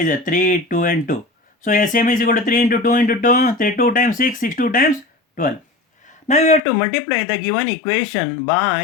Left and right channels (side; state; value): right; drops out; at 6.6 s